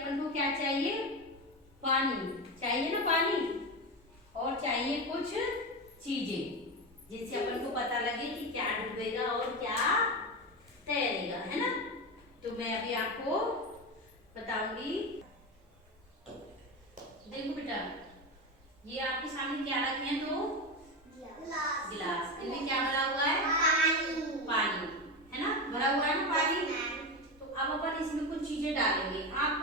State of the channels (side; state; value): both; normal; correlation 0.18